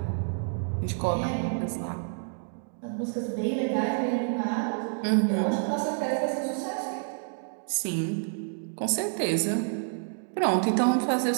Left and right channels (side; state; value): left; silent; digital silence